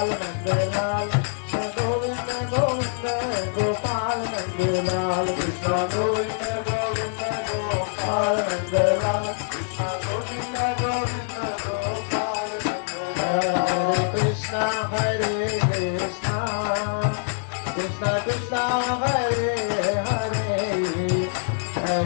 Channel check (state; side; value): silent; right; digital silence